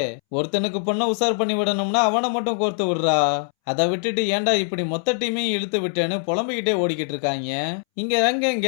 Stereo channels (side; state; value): right; silent; 64 dB below the other